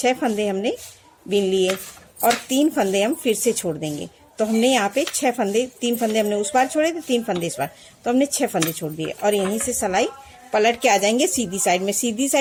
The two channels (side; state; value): both; identical; correlation 1.00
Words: फंदे हमने बीन लिए और 3 फंदे हम फिर से छोड़ देंगे। तो हमने यहाँ पे 6 फंदे, 3 फंदे हमने उस बार छोड़े थे, 3 फंदे इस बार, तो हमने 6 फंदे छोड़ दिए। और यहीं से सिलाई पलट के आ जाएंगे सीधी साइड में। सीधी